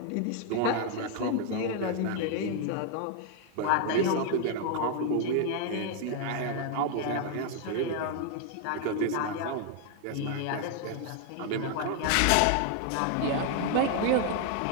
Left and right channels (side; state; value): both; different; correlation 0.00